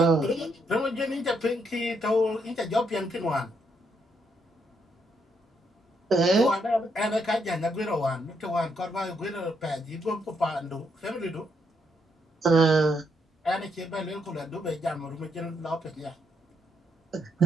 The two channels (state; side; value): normal; both; correlation 0.76